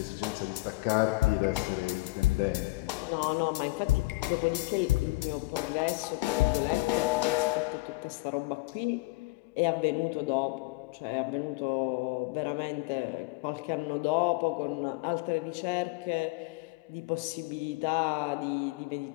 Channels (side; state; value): right; quieter; 22.4 dB